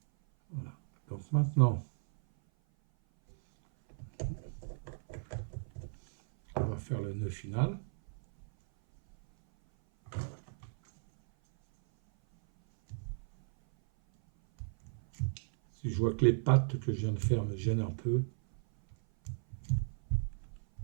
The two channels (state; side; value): silent; left; 55 dB below the other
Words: voilà. Donc maintenant, on va faire le nœud final. Si je vois que les pattes que je viens de faire me gênent un peu,